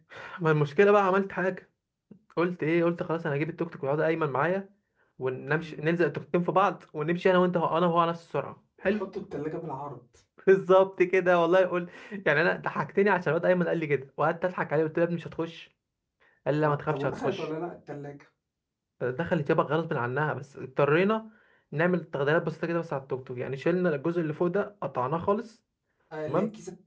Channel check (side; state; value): both; identical; correlation 1.00